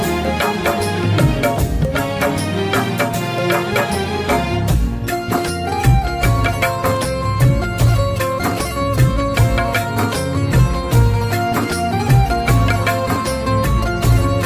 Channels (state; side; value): identical; both; correlation 1.00